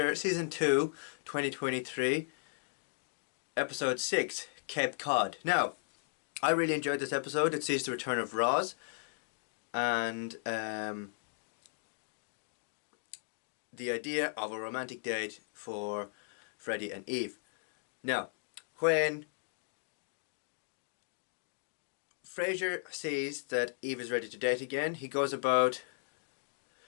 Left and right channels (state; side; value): silent; right; digital silence